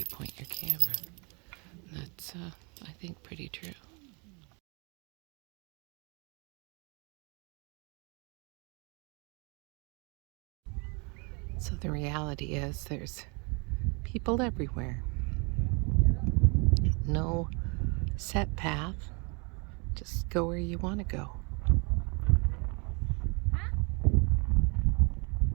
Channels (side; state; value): left; quieter; 32.2 dB